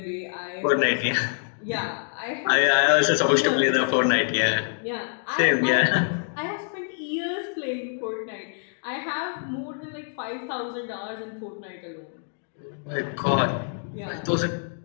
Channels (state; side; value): silent; right; 61 dB below the other